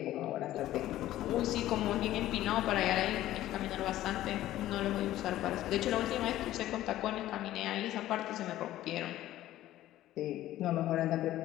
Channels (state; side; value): quieter; right; 14.3 dB